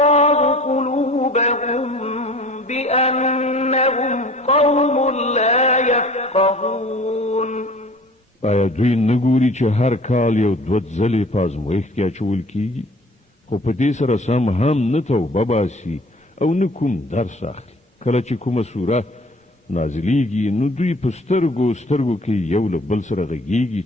قلوبهم بأنهم قوم لا يفقهون آیا دوی نګوري چې هر کال یو دوه ځلې په ازمویښت کې اچول کیږي خو په دې سره سم هم نه توبه باسي او نه کوم درس اخلي کله چې کومه سوره نازلیږي نو دوی په سترګو کې یو له بل سره غږیږي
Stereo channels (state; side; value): normal; both; correlation 0.48